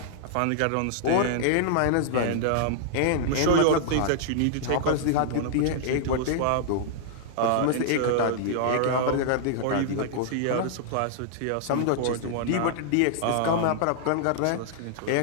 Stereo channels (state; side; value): different; both; correlation -0.01